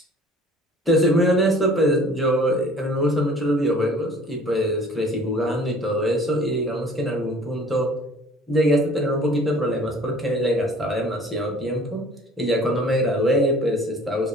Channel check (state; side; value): normal; both; correlation 0.50